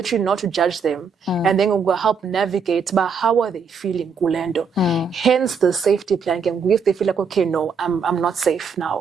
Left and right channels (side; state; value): left; quieter; 5.5 dB